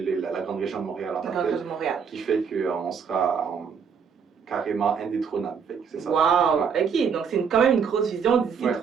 la grande région de Montréal en tant que telle, qui fait qu'on sera carrément indétrônable. C'est ça. Wow! Ouais. OK, donc c'est quand même une grosse vision d'ici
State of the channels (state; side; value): quieter; left; 6.5 dB